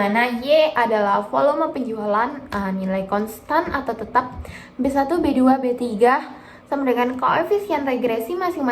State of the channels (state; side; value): identical; both; correlation 1.00